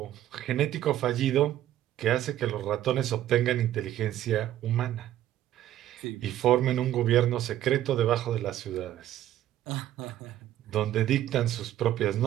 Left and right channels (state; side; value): quieter; left; 12.7 dB